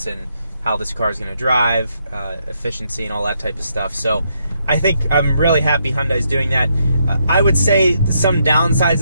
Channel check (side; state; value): both; inverted; correlation -0.77